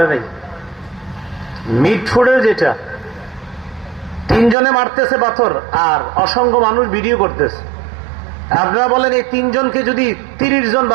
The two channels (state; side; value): drops out; left; at 4.5 s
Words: নাই। মিটফুটের যেটা 3 জনে মারতেছে পাথর আর অসংখ্য মানুষ ভিডিও করতেছে। আপনারা বলেন এই 3 জনকে যদি 30 জন